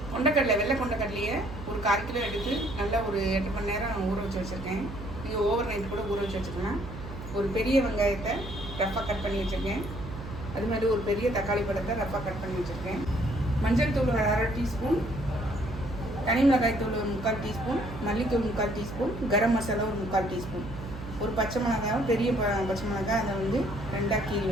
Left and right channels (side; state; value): right; noise; hum, 10 dB below the sound